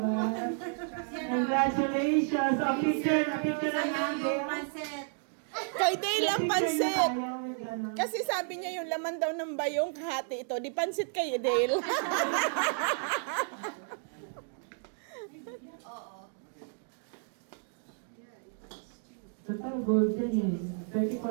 Congratulations! A picture na natin. Pansit. Kay Dale ang pansit. Kasi sabi niya yung laman daw ng bayong kahati ito. Di pansit kay Dale. Total gold yan eh.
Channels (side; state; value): left; silent; 57 dB below the other